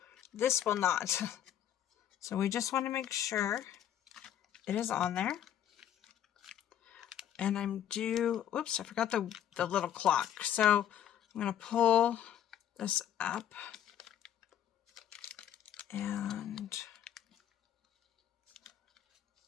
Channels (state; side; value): quieter; right; 10.5 dB